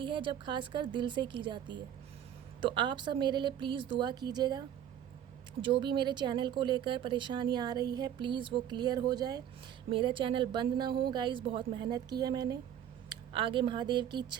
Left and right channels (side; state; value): left; quieter; 10.1 dB